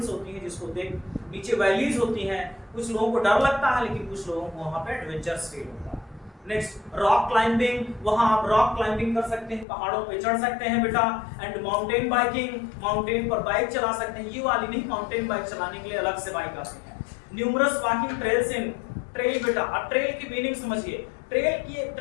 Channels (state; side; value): drops out; right; at 9.7 s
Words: होती हैं जिसको देख, नीचे वैलीज होती हैं। कुछ लोगों को डर लगता है लेकिन कुछ लोगों को वहां पे एडवेंचरस फील होता है। नेक्स्ट रॉक क्लाइंबिंग, वहां आप रॉक क्लाइंबिंग कर सकते हैं, पहाड़ों पे चढ़ सकते हैं बेटा। एंड माउंटेन बाइकिंग, माउंटेन पर बाइक चला सकते हैं। ये वाली नहीं, माउंटेन बाइक चलाने के लिए अलग से बाइक आती है। न्यूमरस वॉकिंग ट्रेल्स इन, ट्रेल बेटा, अब ट्रेल की मीनिंग समझिए।